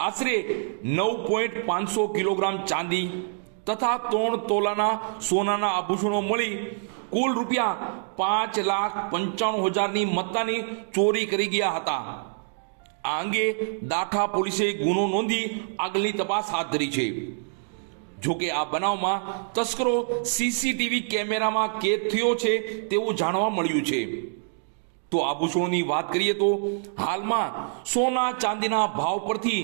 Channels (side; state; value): left; silent; digital silence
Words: આશરે 9.500 કિલોગ્રામ ચાંદી તથા 3 તોલાના સોનાના આભૂષણો મળી કુલ રૂપિયા 5,95,000ની મત્તાની ચોરી કરી ગયા હતા। આ અંગે દાઠા પોલીસે ગુનો નોંધી આગળની તપાસ હાથ ધરી છે। જોકે આ બનાવમાં તસ્કરો સીસીટીવી કેમેરામાં કેદ થયો છે તેવું જાણવા મળ્યું છે। તો આભૂષણોની વાત કરીએ તો હાલમાં સોના ચાંદીના ભાવ પરથી